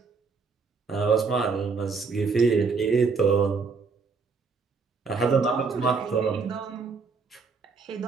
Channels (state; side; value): quieter; left; 4.8 dB